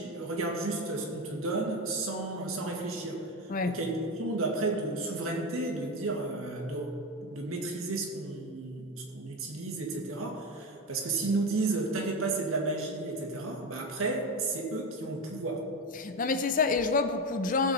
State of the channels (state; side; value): normal; both; correlation 0.18